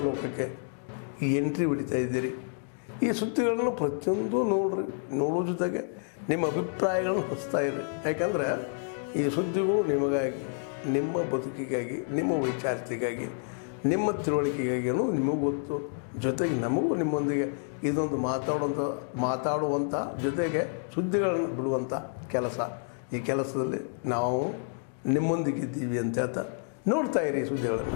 ಲೋಕಕ್ಕೆ ಎಂಟ್ರಿ ಹೊಡಿತಾ ಇದ್ದೀರಿ. ಈ ಸುದ್ದಿಗಳನ್ನು ಪ್ರತಿಯೊಂದು ನೋಡೋ ಜೊತೆಗೆ ನಿಮ್ಮ ಅಭಿಪ್ರಾಯಗಳನ್ನು ಹಚ್ತಾ ಇರಿ. ಯಾಕಂದರೆ ಈ ಸುದ್ದಿಗಳು ನಿಮಗಾಗಿ, ನಿಮ್ಮ ಬದುಕಿಗಾಗಿ, ನಿಮ್ಮ ವೈಚಾರಿಕೆಗಾಗಿ, ನಿಮ್ಮ ತಿಳುವಳಿಕೆಗಾಗಿಯೂ ನಿಮಗೂ ಗೊತ್ತು. ಜೊತೆಗೆ ನಮಗೂ ನಿಮ್ಮೊಂದಿಗೆ ಇದೊಂದು ಮಾತಾಡುವಂಥ ಜೊತೆಗೆ ಸುದ್ದಿಗಳನ್ನು ಬಿಡುವಂಥ ಕೆಲಸ. ಈ ಕೆಲಸದಲ್ಲಿ ನಾವು ನಿಮ್ಮೊಂದಿಗಿದ್ದೀವಿ ಅಂತ ಹೇಳ್ತಾ ನೋಡ್ತಾ ಇರಿ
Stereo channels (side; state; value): right; silent; 58 dB below the other